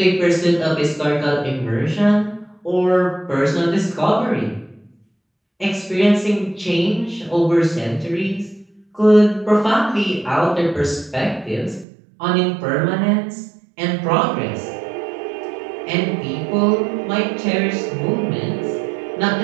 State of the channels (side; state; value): left; drops out; at 11.9 s